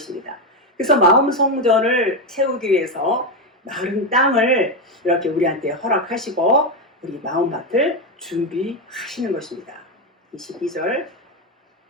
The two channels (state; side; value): normal; both; correlation 0.10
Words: 그래서 마음 성전을 세우기 위해서 마른 땅을 이렇게 우리한테 허락하시고 우리 마음밭을 준비하시는 것입니다. 22절